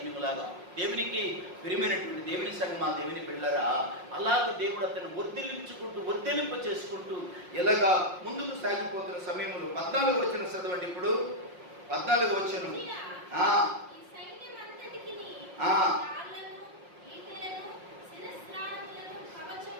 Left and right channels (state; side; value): late; left; 5.6 ms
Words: దేవునికి ప్రియమైనటువంటి దేవుని సంగమా, దేవుని బిడ్డలారా, అలాగ దేవుడు అతను వర్ధిలింప చేసుకుంటూ ఇలాగా ముందుకు సాగిపోతున్న సమయంలో 14వ వచనం చదవండి. ఇప్పుడు 14వ వచనం.